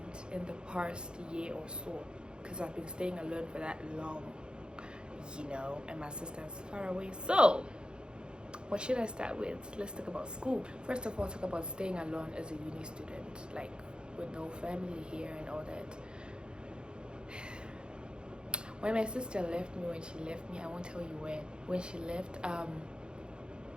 in the past year or so, because I've been staying alone for that long, you know, and my sister is far away. So what should I start with? Let's talk about school. First of all, talk about staying alone as a uni student, like with no family here and all that. When my sister left me, I won't tell you when she left,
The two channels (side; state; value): left; late; 0.050 ms